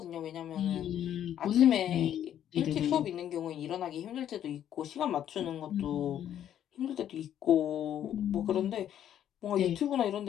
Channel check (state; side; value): quieter; right; 10.5 dB